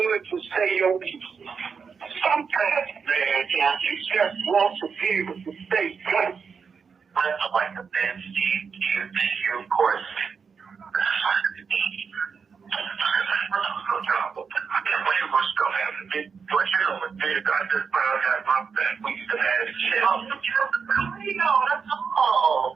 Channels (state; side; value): quieter; left; 5.9 dB